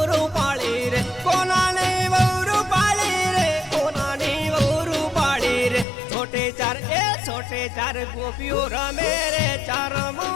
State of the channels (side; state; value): right; drops out; at 5.9 s